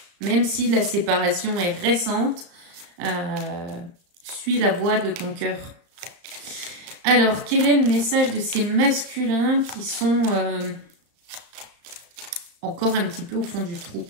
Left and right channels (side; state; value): left; late; 35 ms